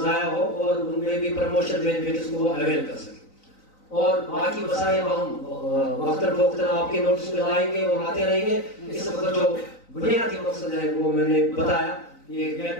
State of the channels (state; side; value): late; right; 3.9 ms